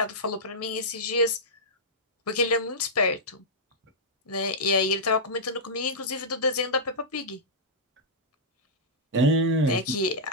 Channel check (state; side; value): normal; both; correlation -0.11